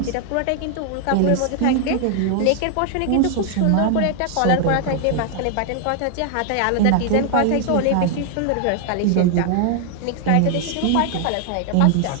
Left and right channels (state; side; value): different; both; correlation 0.00